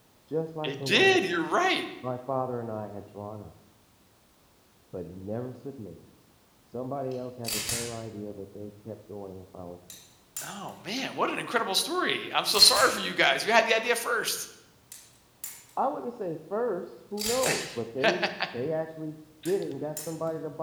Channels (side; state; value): both; identical; correlation 1.00